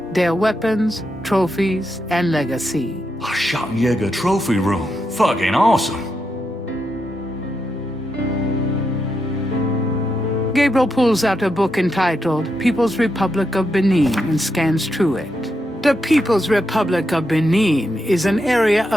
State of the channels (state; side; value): normal; both; correlation 0.84